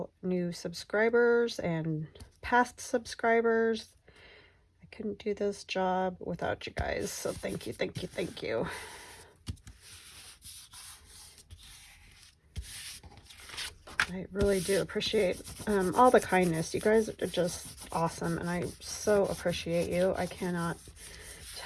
new subscribers and past subscribers. I couldn't do this job without you guys, so thank you, thank you, thank you. I really do appreciate all the kindness. You guys are just awesome, and I so appreciate you. I cannot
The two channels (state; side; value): identical; both; correlation 1.00